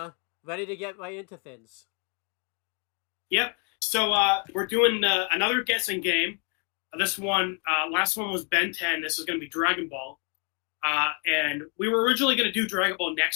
ready to get right into things. Yep. So we're doing another guessing game. This one, last one was Ben 10. This is going to be Dragon Ball, and we were originally going to do Dragon Ball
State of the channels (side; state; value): right; quieter; 35.7 dB